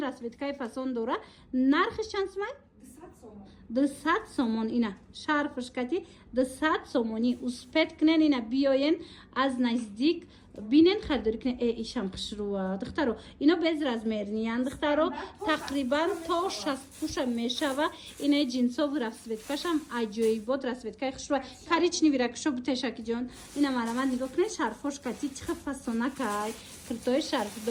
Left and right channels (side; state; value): both; identical; correlation 1.00